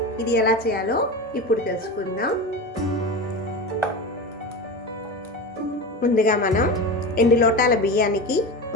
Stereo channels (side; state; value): both; normal; correlation 0.25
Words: ఇది ఎలా చేయాలో ఇప్పుడు తెలుసుకుందాం. ముందుగా మనం 2 లోటాల బియ్యానికి